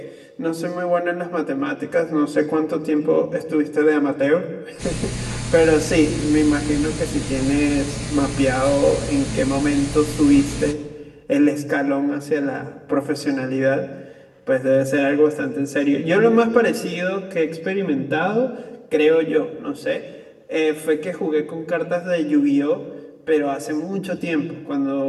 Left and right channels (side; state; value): both; identical; correlation 1.00